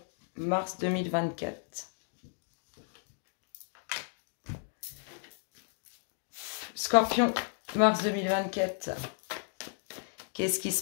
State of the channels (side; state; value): right; silent; 55 dB below the other